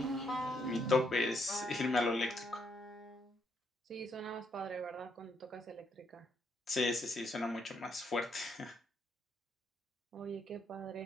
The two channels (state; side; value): normal; both; correlation 0.74